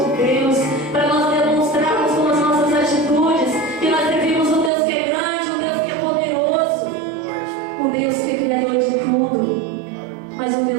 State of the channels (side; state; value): left; drops out; at 4.7 s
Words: Deus, para nós demonstrarmos com as nossas atitudes que nós servimos um Deus que é grande, um Deus que é poderoso, um Deus que é criador de tudo, mas um